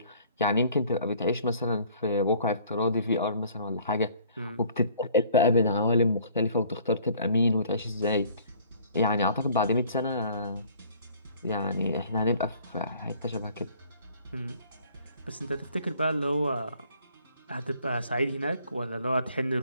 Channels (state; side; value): inverted; both; correlation -0.56